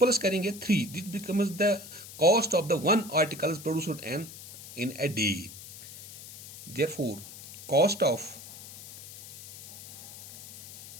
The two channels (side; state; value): left; noise; hiss, 14 dB below the sound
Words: करेंगे 3, this becomes the cost of the one article produced in a day. Therefore cost of